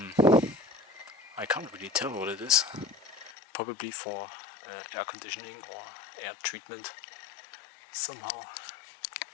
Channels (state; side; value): drops out; right; at 3.3 s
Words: I can't really tell what it is. Probably for air conditioning or air treatment somehow.